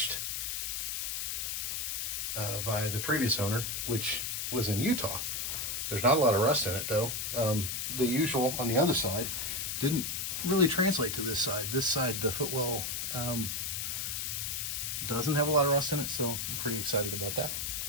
by the previous owner, which was in Utah. There's not a lot of rust in it, though. The usual on the other side didn't really translate to this side. This side, the footwell, doesn't have a lot of rust in it, so I'm pretty excited about that.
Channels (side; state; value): left; noise; hiss, 2 dB below the sound